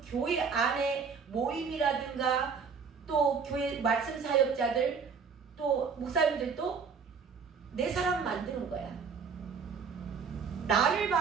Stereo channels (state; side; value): quieter; left; 5.8 dB